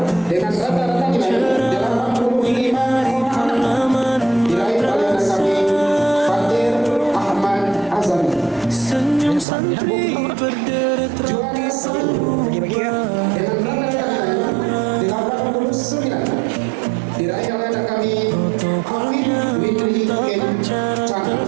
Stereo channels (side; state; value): left; drops out; at 9.5 s